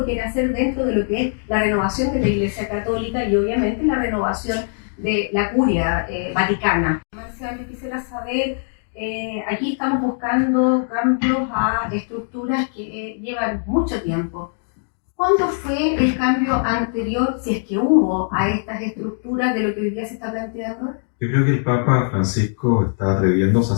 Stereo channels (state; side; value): silent; right; digital silence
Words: quiere hacer dentro de lo que es la renovación de la Iglesia Católica y obviamente la renovación de la curia vaticana. Marcial, yo quisiera saber, aquí estamos buscando cambios a estructuras que llevan mucho tiempo. ¿Cuándo fue el cambio anterior, si es que hubo, a estas estructuras de lo que hoy día se está planteando? Yo creo que el Papa Francisco está atreviéndose a